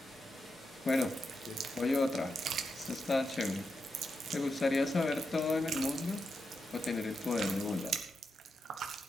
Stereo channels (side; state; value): both; normal; correlation 0.86